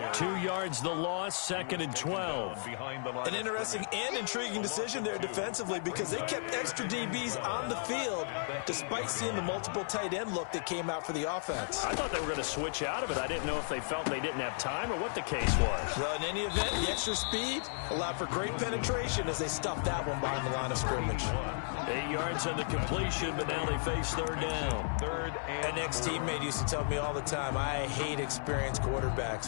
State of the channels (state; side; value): silent; right; 55 dB below the other